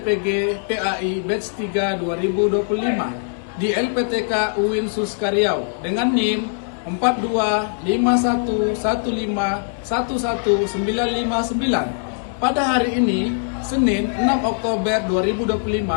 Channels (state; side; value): silent; right; digital silence